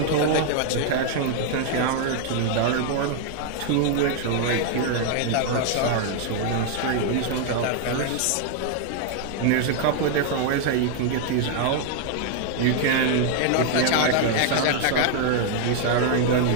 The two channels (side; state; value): both; different; correlation 0.00